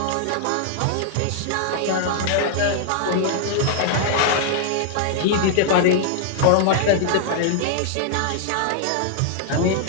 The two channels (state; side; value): different; both; correlation -0.01